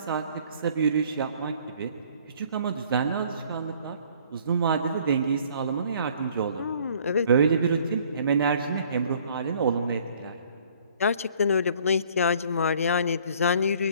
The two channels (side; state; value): both; inverted; correlation -0.57